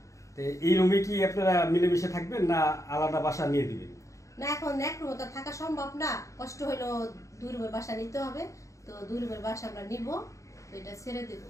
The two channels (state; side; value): late; right; 0.15 ms